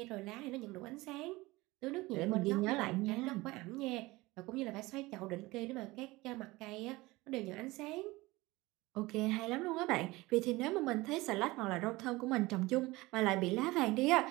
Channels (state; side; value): quieter; left; 20.8 dB